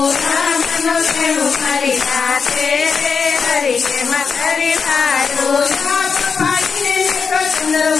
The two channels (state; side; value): quieter; right; 5.6 dB